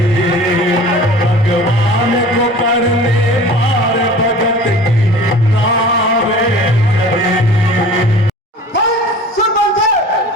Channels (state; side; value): normal; both; correlation 0.42